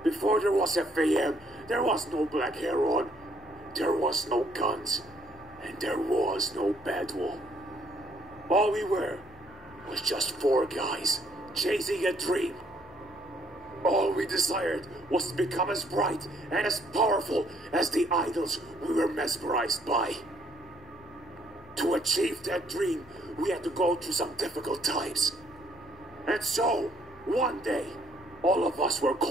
Before there was FAM, there was no Black Heron, there was no guns, and there was no Badwall. All we were was just 4 guys chasing a dream. All we desired was to become as bright and as powerful as the idols we were mesmerized by. To achieve that dream, we had to go through some difficult times. And so, one day, all of us were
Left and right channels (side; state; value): both; normal; correlation 0.66